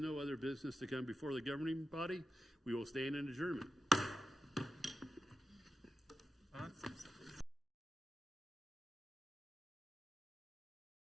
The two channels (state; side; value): normal; both; correlation 0.90